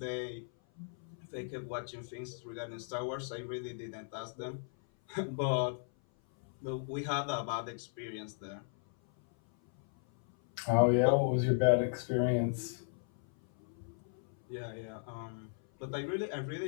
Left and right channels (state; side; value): silent; right; 54 dB below the other